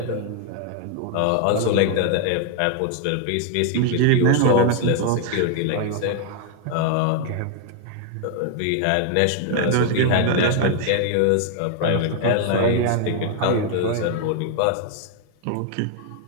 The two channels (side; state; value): both; different; correlation 0.00